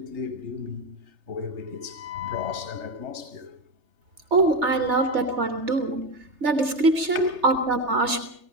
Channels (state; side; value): late; left; 3.3 ms